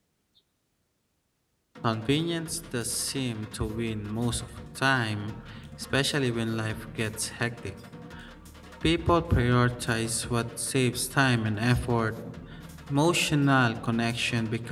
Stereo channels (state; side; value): identical; both; correlation 1.00